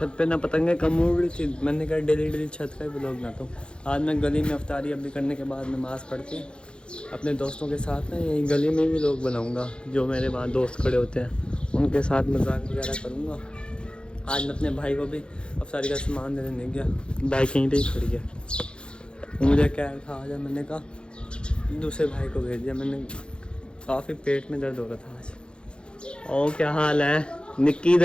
पे ना पतंगें कम उड़ रही थी। मैंने कहा डेली छत का ही ब्लॉग ना तो आज मैं गली में अफ्तारी अभी करने के बाद नमाज़ पढ़ के अपने दोस्तों के साथ ना यहीं गली में भी लोग बनाऊँगा। जो मेरे वहाँ दोस्त खड़े होते हैं उनके साथ मजाक वगैरह करूँगा। आज मैं अपने भाई को भी अफ्तारी का सामान देने नहीं गया, बाइक यहीं पर ही खड़ी है। मुझे क्या था आज, मैंने कहा दूसरे भाई को भेज दिया। मैंने काफ़ी पेट में दर्द हो रहा था आज। और क्या हाल है निक्की?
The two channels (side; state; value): right; late; 0.054 ms